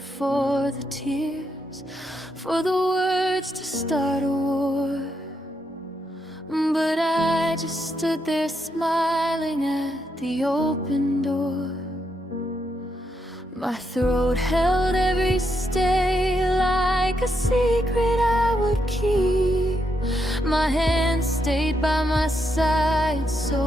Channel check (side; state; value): both; normal; correlation 0.80